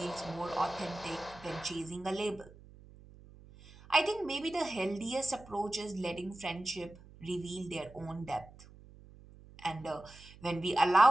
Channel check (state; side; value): noise; right; hum, 21 dB below the sound